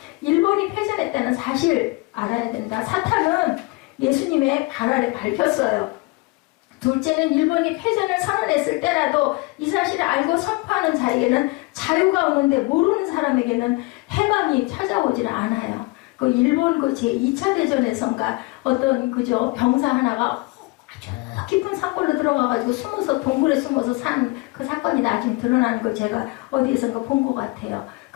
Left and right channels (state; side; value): quieter; right; 25.0 dB